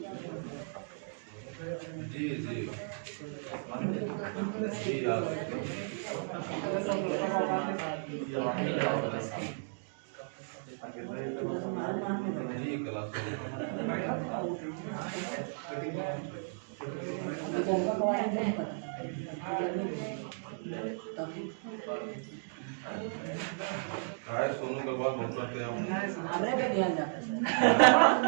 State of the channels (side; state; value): left; silent; digital silence